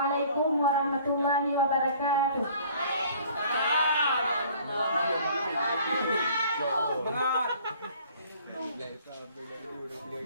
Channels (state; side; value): inverted; both; correlation -0.53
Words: warahmatullahi wabarakatuh. Bengat.